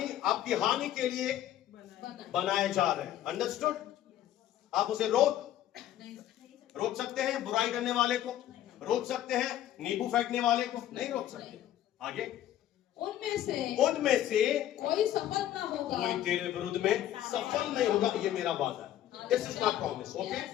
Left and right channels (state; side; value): quieter; right; 12.1 dB